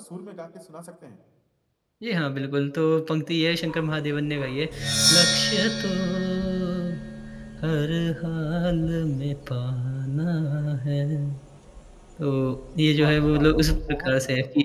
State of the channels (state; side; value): identical; both; correlation 1.00